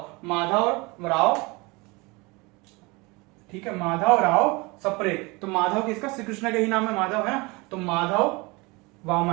माधव राव, ठीक है, माधव राव सप्रे, तो माधव किसका, श्री कृष्ण का ही नाम है माधव, है ना, तो माधव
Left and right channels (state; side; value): quieter; left; 25.7 dB